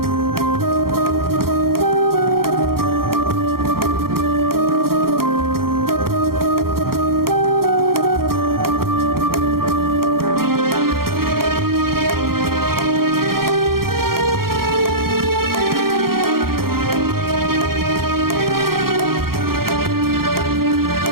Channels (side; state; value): left; late; 0.93 ms